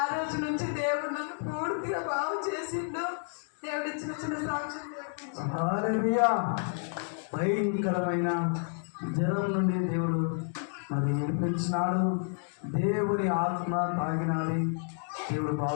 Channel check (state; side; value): silent; right; 58 dB below the other